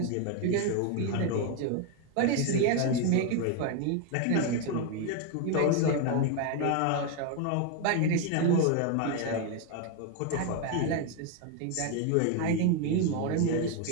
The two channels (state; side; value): different; both; correlation 0.01